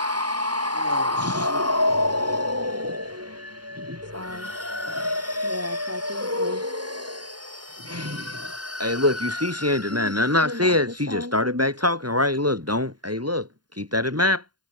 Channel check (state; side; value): late; left; 0.70 ms